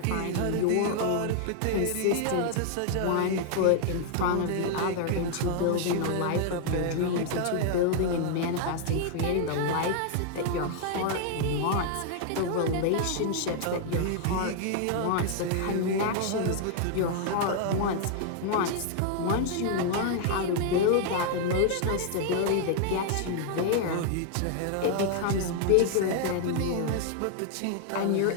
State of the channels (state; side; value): different; both; correlation 0.00